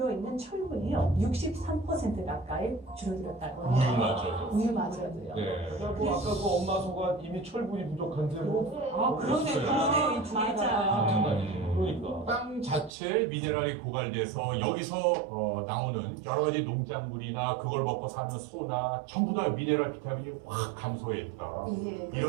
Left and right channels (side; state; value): left; drops out; at 12.9 s